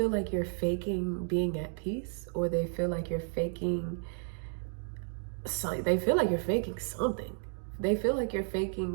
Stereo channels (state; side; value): silent; left; 56 dB below the other